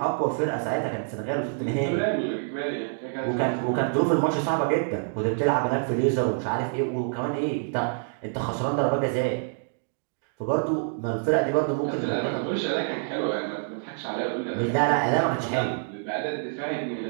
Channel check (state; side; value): silent; left; digital silence